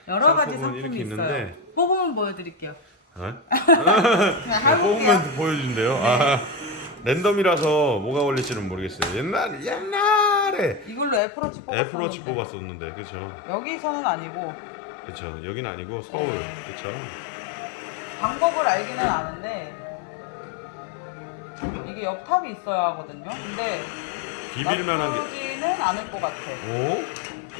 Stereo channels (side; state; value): right; drops out; at 11.2 s